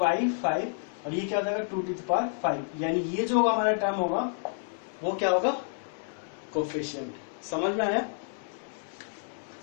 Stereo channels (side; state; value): right; silent; 58 dB below the other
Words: और ये क्या हो जाएगा 2 टू द पावर 5। यानी ये जो होगा हमारा टर्म होगा वो क्या होगा, कोफिशिएंट। समझ में आया?